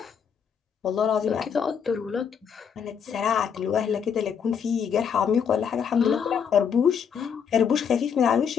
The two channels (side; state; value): right; quieter; 7.3 dB